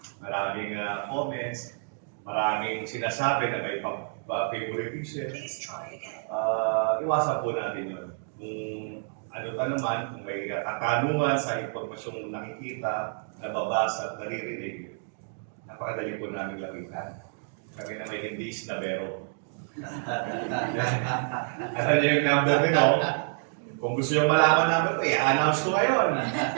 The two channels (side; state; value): left; silent; 59 dB below the other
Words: maraming comments, maraming sinasabi na may favoritism. Iwasan po natin yun. Ano pa naman, kung may katanungan sa impormasyong nakikita, nababasa, naririnig, napakadali po namin lapitan. Kami na may hindi isnabero. Alam niyo yung number ko, no? Kung gusto nyo malaman namin ito, i-announce ko ngayon.